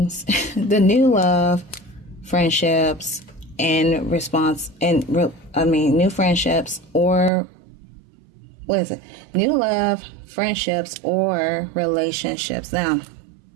the new love, friendships, and new friendships, or what is it? New love, friendships, or relationships. Now,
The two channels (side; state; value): left; drops out; at 7.3 s